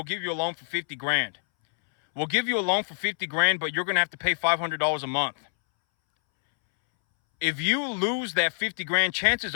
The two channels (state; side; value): silent; right; 61 dB below the other